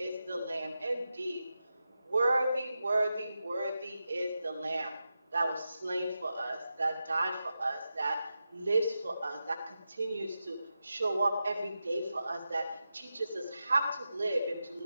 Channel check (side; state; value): both; inverted; correlation -0.90